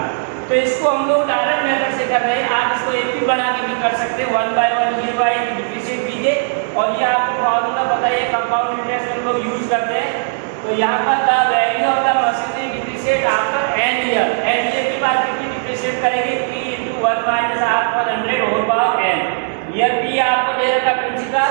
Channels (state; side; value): silent; left; digital silence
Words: तो इसको हम लोग direct method से कर रहे हैं. आप इसको एक भी बना के भी कर सकते हैं. 1 by 1 year by डिफरेंशिएट कीजिए और ये आपको फॉर्मूला बताइए. कंपाउंड इंटरेस्ट हम लोग यूज करते हैं. तो यहाँ पर the value of the machinery depreciate after n year. n year के बाद कितनी डिप्रिशिएट करेंगे. P into 1 minus R पर 100 whole power n. Year P आपको दे रखा प्रिंसिपल,